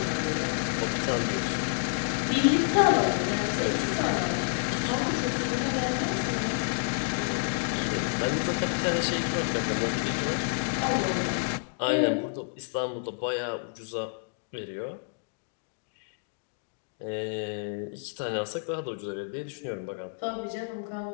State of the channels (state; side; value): silent; right; digital silence